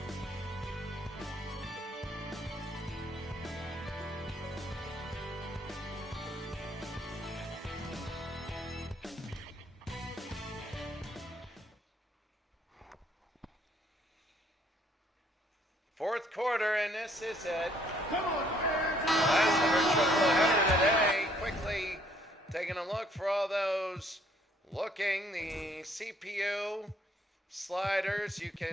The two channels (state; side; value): normal; both; correlation 0.64